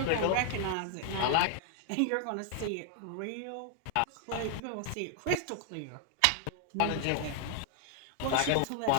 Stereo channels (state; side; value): different; both; correlation 0.00